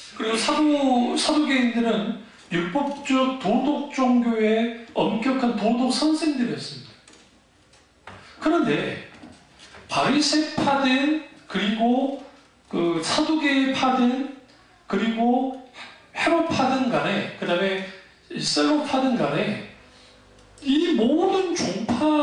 그리고 사두개인들은 율법적 도덕 종교의 엄격한 도덕 선생들이었습니다. 그런데 바리새파든 그리고 그 사두개파든 그리고 헤롯파든 간에 그 다음에 셀로파든 간에 이 모든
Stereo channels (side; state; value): both; identical; correlation 1.00